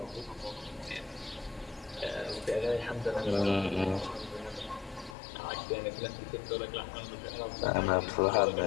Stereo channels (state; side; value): drops out; right; at 5.2 s